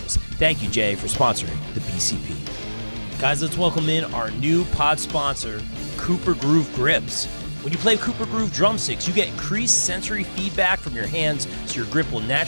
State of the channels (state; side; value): inverted; both; correlation -1.00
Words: Thank you, Jay, for sponsoring the BCP. Guys, let's welcome in our new pod sponsor, Cooper Groove Grips. When you play Cooper Groove drumsticks, you get increased sensory feedback from your hands, so your grip will